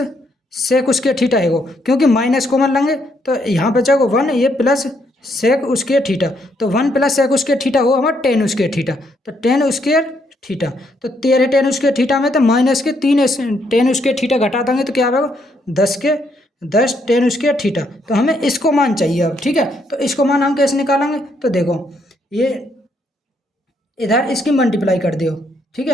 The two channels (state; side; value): normal; both; correlation 0.73